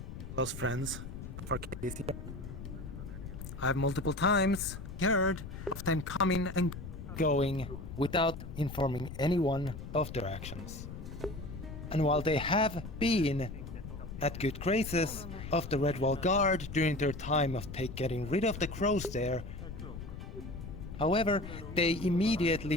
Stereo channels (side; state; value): left; noise; rumble, 10 dB below the sound